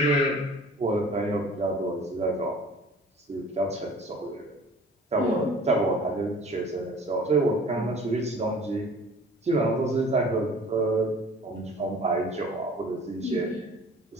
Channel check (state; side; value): normal; both; correlation 0.47